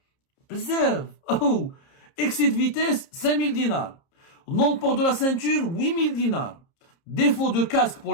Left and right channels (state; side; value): late; right; 30 ms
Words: Bzaf. Oh. Excès de vitesse, 5 000 dinars. Non-port de la ceinture, 8 000 dinars. Défaut de casque